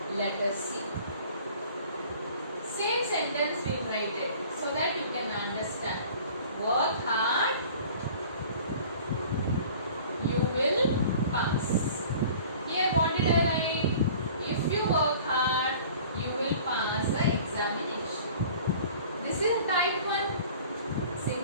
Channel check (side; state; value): both; inverted; correlation -0.47